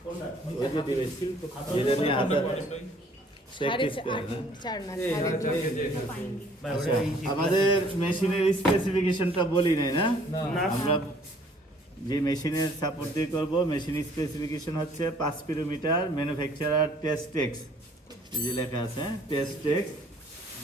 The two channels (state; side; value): normal; both; correlation 0.58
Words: ওই যে ডিভাইস যেটা নিয়ে হাতে প্র্যাকটিস করে না। আচ্ছা, আমাদের মেশিনের স্পেসিফিকেশনটা বলি নাই না? আমরা যে মেশিনের সাপোর্ট দিয়ে করব, মেশিন স্পেসিফিকেশন হচ্ছে 5 কিলোমিটার, ম্যানুফ্যাকচারার টেস্টেক্স, এই যে লেখা আছে Testex,